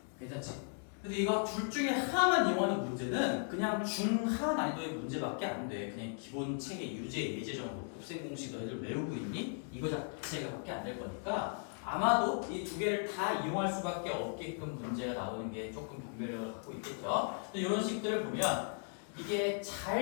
괜찮지? 근데 이거 둘 중에 하나만 이용하는 문제는 그냥 중하 난이도의 문제밖에 안 돼. 그냥 기본 책의 유제, 예제 정도 곱셈 공식 너희들 외우고 있니? 이거 자체가 밖에 안 될 거니까 아마도 이 두 개를 다 이용할 수밖에 없게끔 문제가 나오는 게 조금 변별력을 갖고 있겠죠. 근데 이런 식들을 보면 이게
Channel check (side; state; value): right; silent; 53 dB below the other